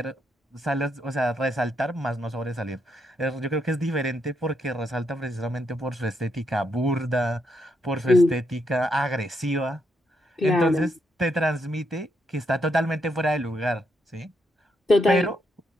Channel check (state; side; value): normal; both; correlation 0.79